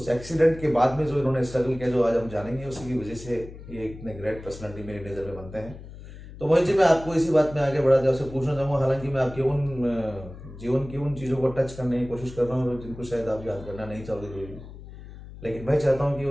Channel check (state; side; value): noise; left; hum, 15 dB below the sound